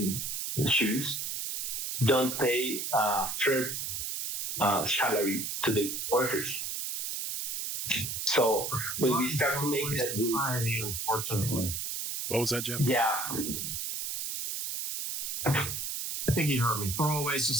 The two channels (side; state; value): right; noise; hiss, 3 dB below the sound